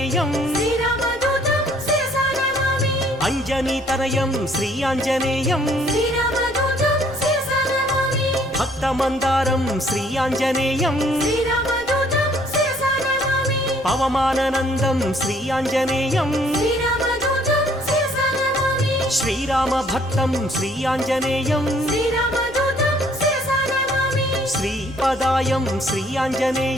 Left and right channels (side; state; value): left; noise; rumble, 23 dB below the sound